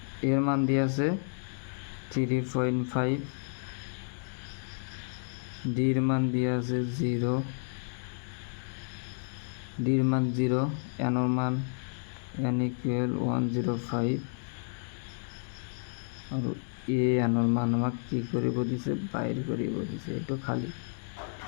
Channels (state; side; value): silent; right; digital silence